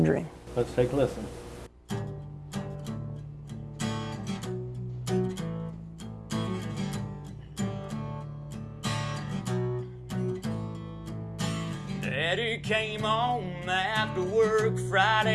Dream. Let's take a listen. Daddy came home after work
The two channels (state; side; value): identical; both; correlation 1.00